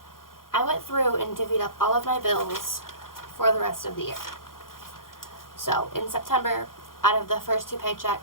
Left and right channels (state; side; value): late; right; 0.91 ms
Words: I went through and divvied up all of my bills for the rest of the year. So in September, out of the first 2